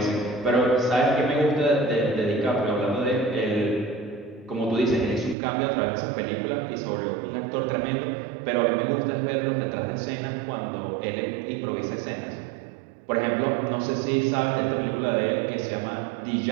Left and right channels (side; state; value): left; drops out; at 5.4 s